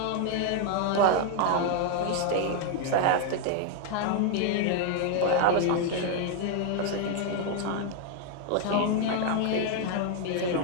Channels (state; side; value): different; both; correlation 0.00